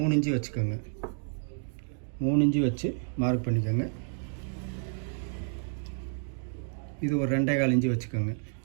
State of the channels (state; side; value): silent; left; 58 dB below the other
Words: இன்ச்சு வச்சுக்கோங்க. 3 இன்ச்சு வச்சு மார்க் பண்ணிக்கோங்க. இது ஒரு 2.25 இன்ச்சு வச்சுக்கோங்க.